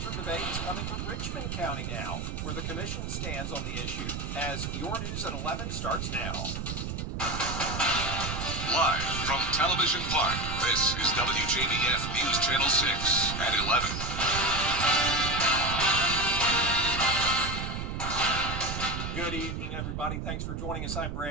debates coming to Richmond County now, where the commission stands on the issue. As Your News at 11 starts now. Live from Television Park, this is WJBF News Channel 6 at 11. Good evening, everybody. Thanks for joining us. I'm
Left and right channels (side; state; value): right; noise; rumble, 4 dB below the sound